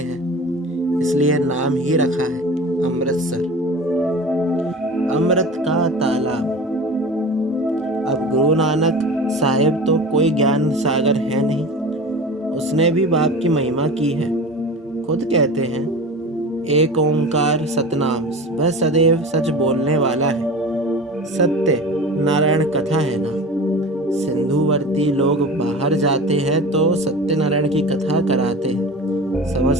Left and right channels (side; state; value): both; normal; correlation 0.34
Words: इसलिए नाम ही रखा है अमृतसर, अमृत का तालाब। अब गुरु नानक साहिब तो कोई ज्ञान सागर है नहीं, उसने भी बाप की महिमा की है। खुद कहते हैं एक ओंकार सतनाम, वह सदैव सच बोलने वाला है। सत्य नारायण कथा है ना। सिंधुवर्ती लोग बाहर जाते हैं तो सत्यनारायण की कथा कराते हैं,